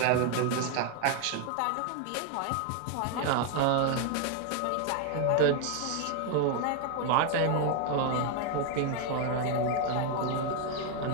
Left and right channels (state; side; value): different; both; correlation 0.01